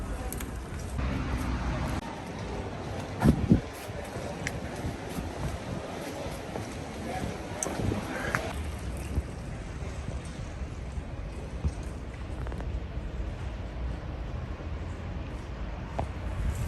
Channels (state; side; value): identical; both; correlation 1.00